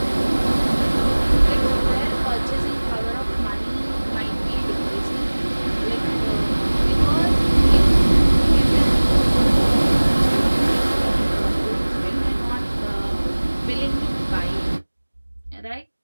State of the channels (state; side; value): inverted; both; correlation -1.00